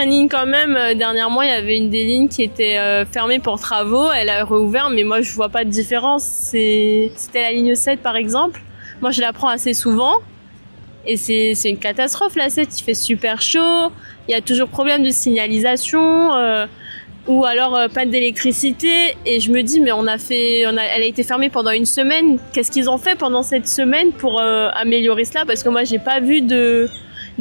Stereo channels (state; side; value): inverted; both; correlation -1.00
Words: lignes quand même. Dernièrement, il y avait une des lignes qui était fermée pour travaux. Elle a rouvert, mais moi, je vois pas de différence. C'était la ligne 7, par exemple. Moi, je la prends assez souvent. Et c'est une catastrophe, la 7. Il fait super chaud. Il y a toujours problème de signalisation. Ou alors panne d'électricité. Et je me dis, mais elle a été fermée pendant une semaine. Qu'est-ce qu'ils ont fait pendant cette semaine pour améliorer cela? Parce que moi, j'ai pas vu